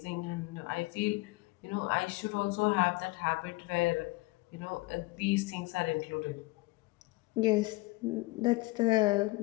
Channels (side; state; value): right; quieter; 22.7 dB